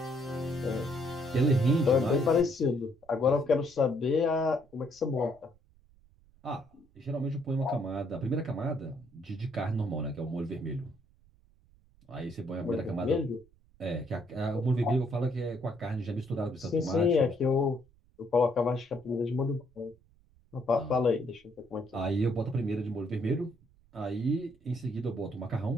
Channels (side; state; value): right; noise; rumble, 30 dB below the sound